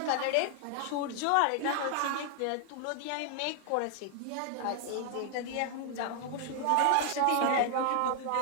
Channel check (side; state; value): both; different; correlation 0.00